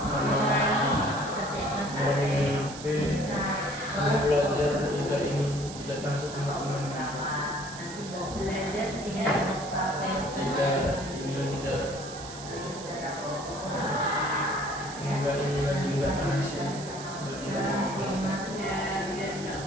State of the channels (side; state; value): right; noise; hiss, 13 dB below the sound